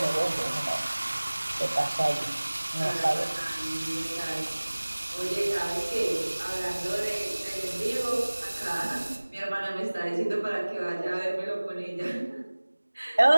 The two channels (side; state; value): both; inverted; correlation -1.00